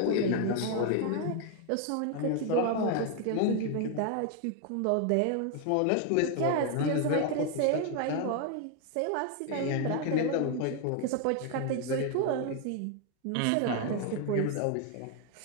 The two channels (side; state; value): both; different; correlation 0.01